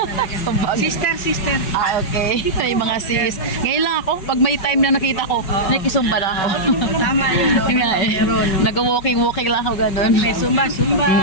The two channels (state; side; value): late; right; 5.3 ms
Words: Sumbang. Sister. Okay. May mga sis. Ngayon lang ako, pag may time na nakita ko, nakikisumba na ako. Tama yun, no? Yun nga eh. Nag-walking lang ako gano'n. May Zumba.